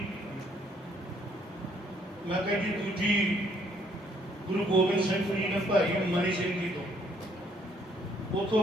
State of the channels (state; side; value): normal; both; correlation 0.66